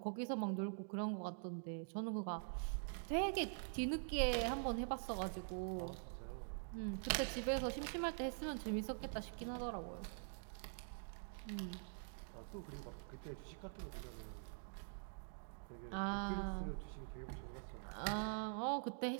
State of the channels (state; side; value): silent; left; digital silence